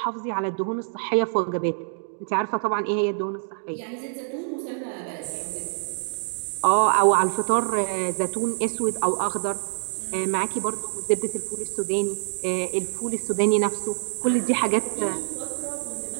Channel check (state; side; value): silent; left; digital silence